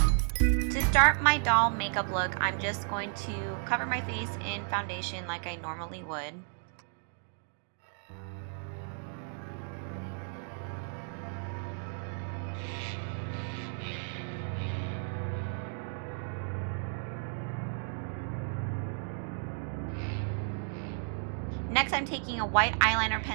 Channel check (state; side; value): silent; left; 56 dB below the other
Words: To start my doll makeup look, I'm just going to cover my face in foundation like I normally would. Next, I'm taking a white eyeliner